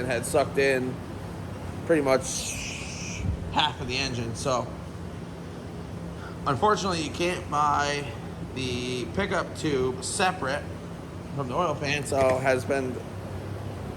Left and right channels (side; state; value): both; identical; correlation 1.00